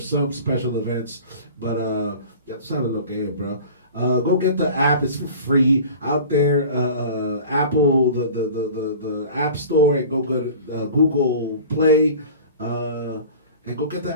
special events. But ya tú sabes lo que es, bro. Go get the app. It's for free out there. Apple, the App Store, and go to Google Play. And go get the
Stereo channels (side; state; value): both; inverted; correlation -0.41